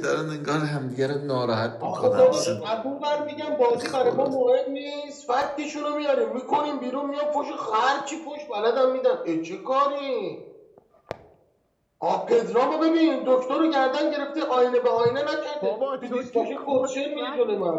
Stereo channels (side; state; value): both; identical; correlation 1.00